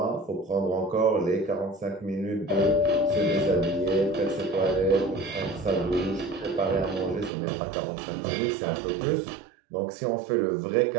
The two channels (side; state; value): left; drops out; at 7.3 s